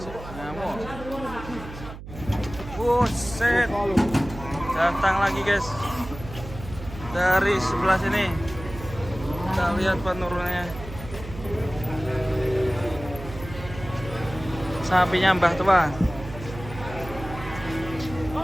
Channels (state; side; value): noise; right; hum, 13 dB below the sound